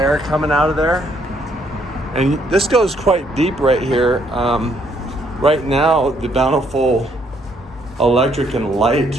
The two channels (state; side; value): normal; both; correlation 0.69